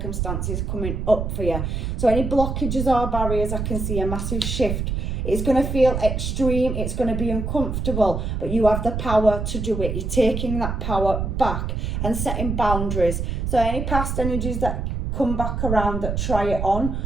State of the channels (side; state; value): right; noise; rumble, 2 dB below the sound